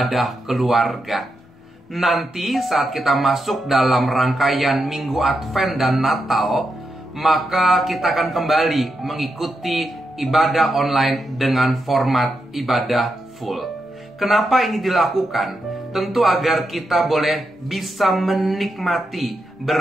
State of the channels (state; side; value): normal; both; correlation 0.85